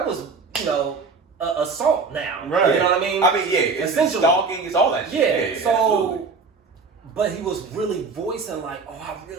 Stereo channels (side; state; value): left; quieter; 4.6 dB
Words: was assault now. Right. You know what I mean? I mean, it's stalking, it's all that shit. Yeah, so, absolutely. But he was really voicing like, oh, I